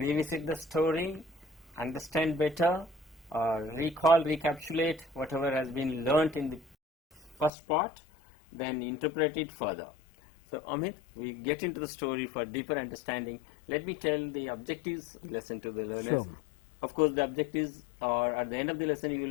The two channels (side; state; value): right; drops out; at 7.5 s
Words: the story, understand better, recall, recapitulate whatever has been learnt in the first part, then interpret it further. So, Amit, we get into the story for deeper understanding. Let me tell the objectives lesson to the learners. Sure. Of course, the objectives are at the end of the lesson you